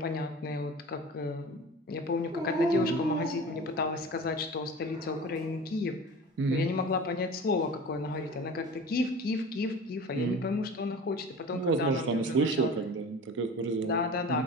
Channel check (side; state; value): both; normal; correlation 0.37